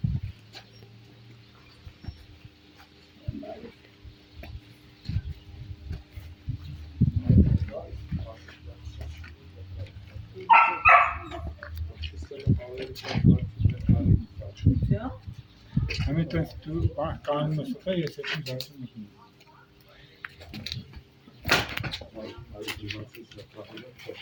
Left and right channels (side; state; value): both; identical; correlation 1.00